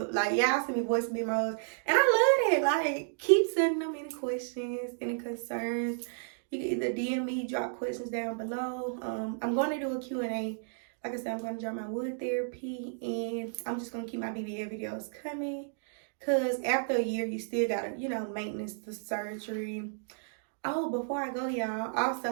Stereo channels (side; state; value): left; silent; digital silence